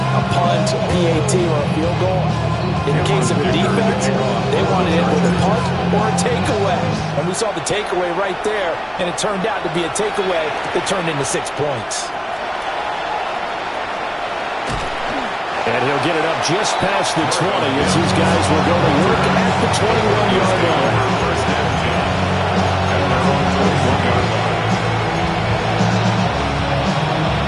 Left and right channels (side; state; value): both; identical; correlation 1.00